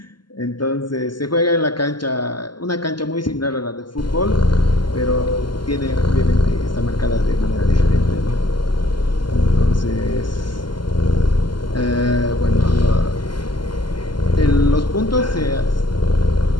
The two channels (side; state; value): right; late; 0.71 ms